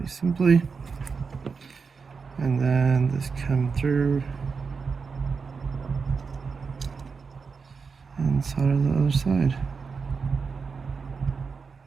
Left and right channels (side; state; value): left; quieter; 5.2 dB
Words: simply. And then this come through and solder the other side.